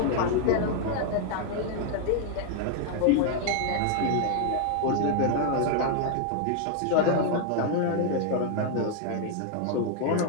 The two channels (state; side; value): different; both; correlation 0.00